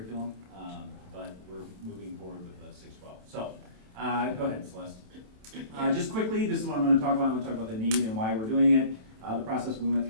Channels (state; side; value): late; left; 27 ms